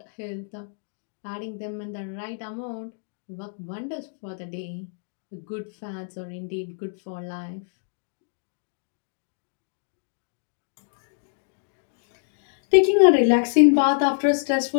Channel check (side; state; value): right; silent; digital silence